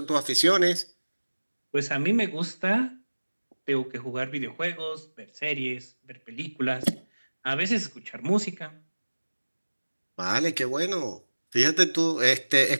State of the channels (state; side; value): inverted; both; correlation -1.00